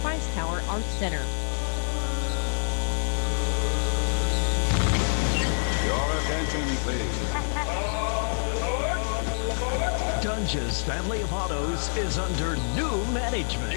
Christ Tower Arts Center. Your attention, please. Dunge's family of autos is under new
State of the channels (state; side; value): silent; right; 55 dB below the other